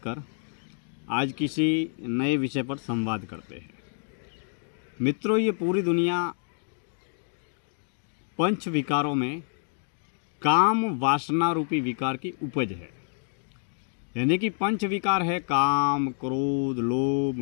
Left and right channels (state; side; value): silent; right; 59 dB below the other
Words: आज किसी नए विषय पर संवाद करते हैं। मित्रों, ये पूरी दुनिया पंच विकारों में काम वासना रूपी विकार की उपज है। यानी कि पंच विकार है काम, क्रोध,